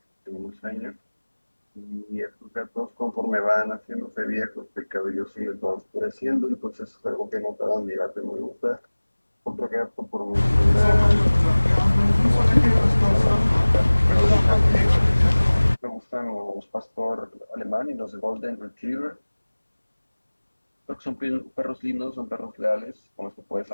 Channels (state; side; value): inverted; both; correlation -1.00